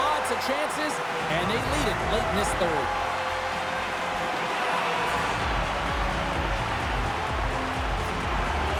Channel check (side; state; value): both; identical; correlation 1.00